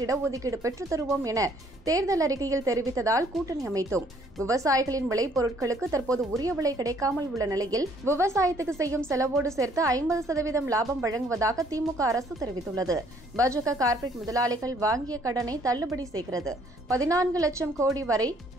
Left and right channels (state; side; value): normal; both; correlation 0.63